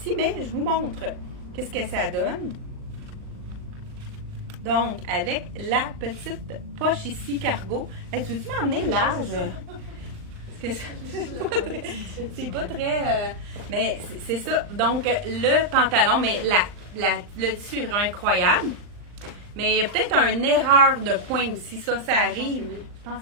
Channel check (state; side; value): late; left; 39 ms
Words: Mais je vous montre qu'est-ce que ça donne. Donc, avec la petite poche ici, cargo. Hey, tu veux-tu m'emmener large? C'est pas très... mais c'est ça. Donc, le pantalon, mais le tissu est vraiment incroyable. Mais il y a peut-être une erreur de point aussi. Ça arrive. Je pense